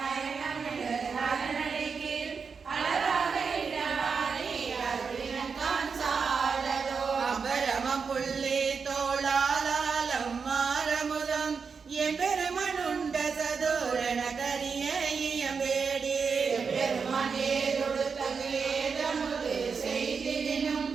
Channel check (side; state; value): left; quieter; 5.5 dB